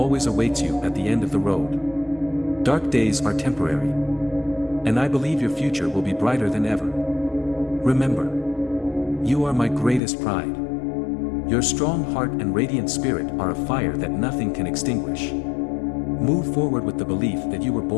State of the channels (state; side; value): drops out; right; at 10.0 s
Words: awaits you at the end of the road. Dark days are temporary, and I believe your future will be brighter than ever. Remember, you are my greatest pride. Your strong heart and radiant spirit are a fire that nothing can extinguish. Move forward with the belief that you were